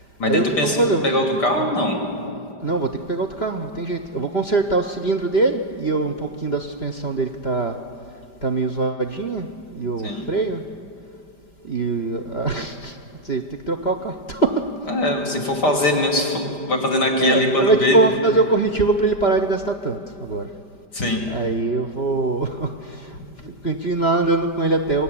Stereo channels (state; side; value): late; right; 5.1 ms